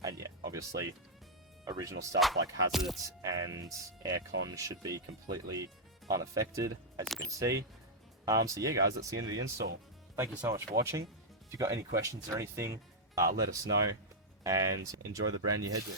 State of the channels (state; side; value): normal; both; correlation -0.06